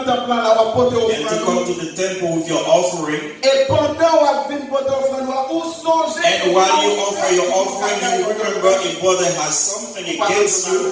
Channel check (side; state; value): both; identical; correlation 1.00